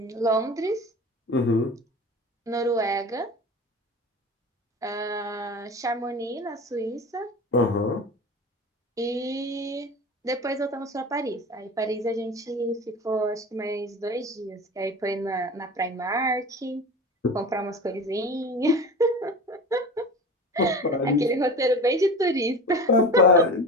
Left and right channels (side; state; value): both; normal; correlation 0.33